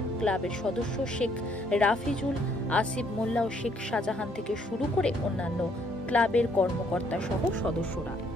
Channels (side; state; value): both; normal; correlation 0.67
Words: ক্লাবের সদস্য শেখ রাফিজুল, আসিফ মোল্লা ও শেখ শাহজাহান থেকে শুরু করে অন্যান্য ক্লাবের কর্মকর্তা সহ সদস্যরা।